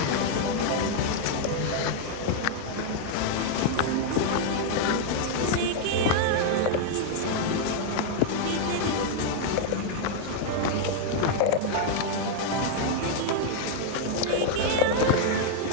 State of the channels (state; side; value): different; both; correlation 0.00